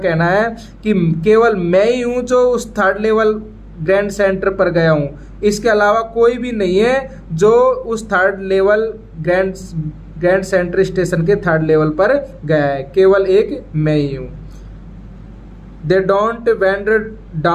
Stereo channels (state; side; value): identical; both; correlation 1.00